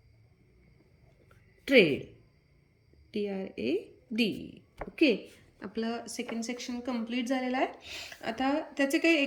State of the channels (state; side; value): identical; both; correlation 1.00